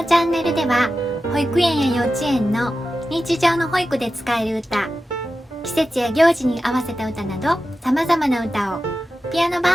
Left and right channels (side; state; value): both; normal; correlation 0.92